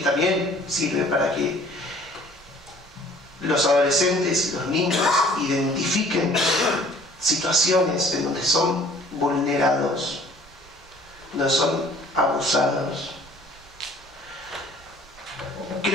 sirve para que los adolescentes y los niños identifiquen situaciones en donde son vulnerados, donde son abusados.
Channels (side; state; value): both; normal; correlation 0.53